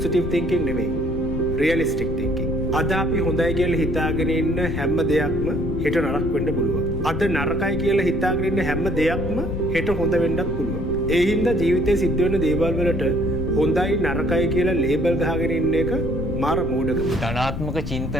තින්කින් නෙමෙයි. Realistic thinking. අද අපි හොඳයි කියලා හිතාගෙන ඉන්න හැම දෙයක්ම හෙට නරක වෙන්න පුළුවන්. අද නරකයි කියලා හිතාගෙන ඉන්න හැම දෙයක්ම හෙට හොඳ වෙන්නත් පුළුවන්. ඒ හින්දා ජීවිතේ සිද්ධ වෙන දේවල් වලට හොඳයි නරකයි කියලා ලේබල් ගහගෙන ඉන්න එක මාර මෝඩකම. ධනාත්මක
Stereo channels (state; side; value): noise; left; rumble, 6 dB below the sound